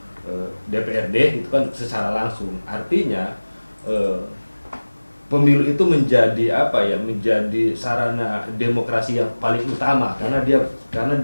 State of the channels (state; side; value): inverted; both; correlation -1.00